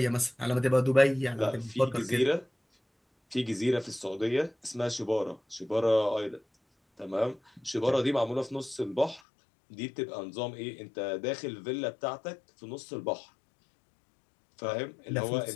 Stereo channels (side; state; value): right; drops out; at 9.2 s